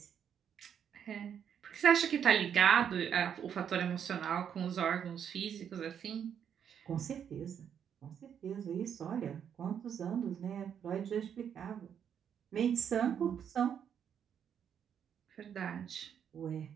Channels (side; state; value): left; quieter; 8.3 dB